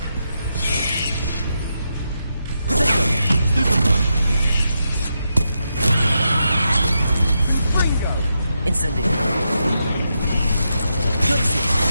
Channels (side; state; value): both; inverted; correlation -0.85